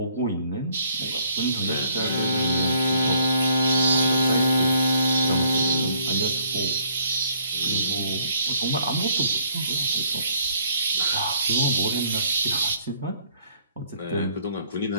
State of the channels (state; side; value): inverted; both; correlation -0.64